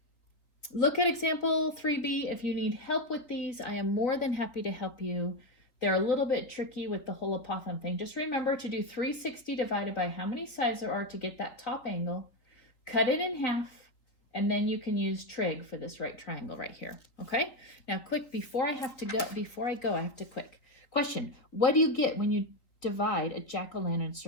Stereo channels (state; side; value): late; right; 4.0 ms